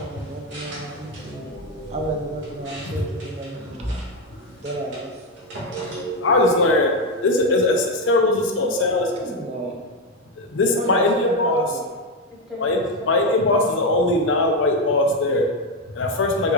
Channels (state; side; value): normal; both; correlation 0.08